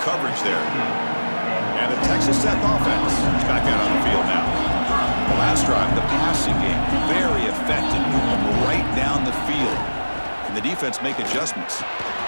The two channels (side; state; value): both; inverted; correlation -1.00